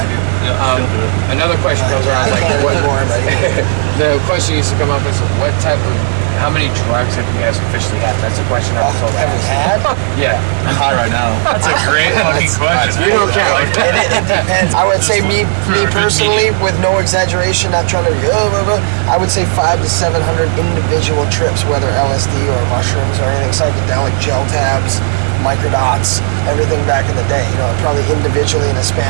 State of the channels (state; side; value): silent; left; digital silence